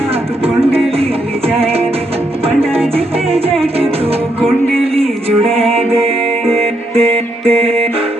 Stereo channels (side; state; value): both; normal; correlation 0.77